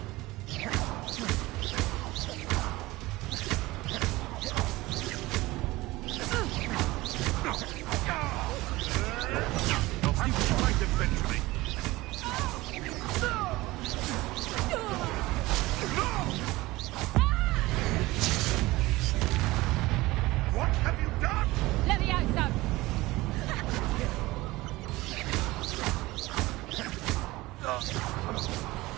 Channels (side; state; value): left; quieter; 19.7 dB